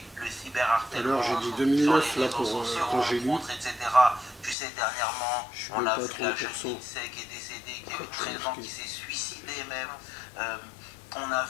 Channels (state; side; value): drops out; right; at 4.5 s